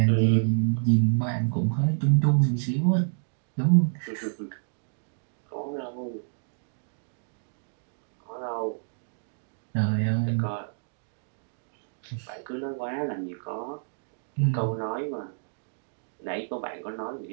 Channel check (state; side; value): silent; left; digital silence